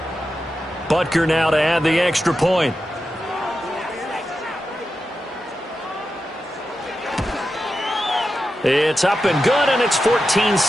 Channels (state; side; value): normal; both; correlation 0.90